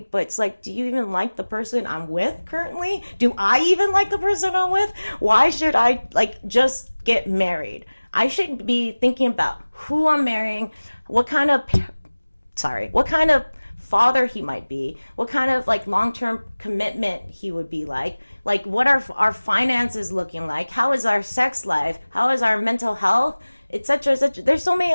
But it's like, do you even like the person I'm with currently? Do I even like the person I'm with? Why should I, just get married? I should be thinking about who I'm marrying, what kind of father he might be, what kind of long-term commitment he would be like what are our finances looking like, how is our sex life, how is our mental health, etc. There's so many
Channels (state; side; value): inverted; both; correlation -1.00